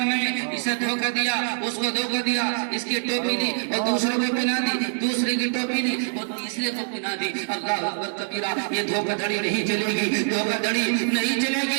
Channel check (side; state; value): left; silent; 62 dB below the other